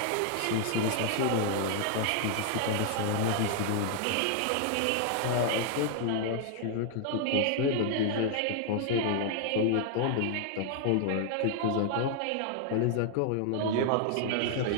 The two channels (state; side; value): different; both; correlation 0.00